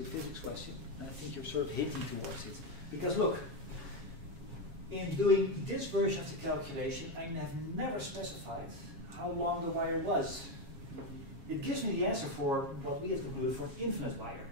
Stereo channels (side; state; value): left; late; 7.3 ms